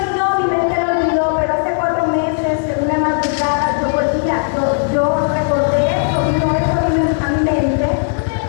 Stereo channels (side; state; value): right; silent; 61 dB below the other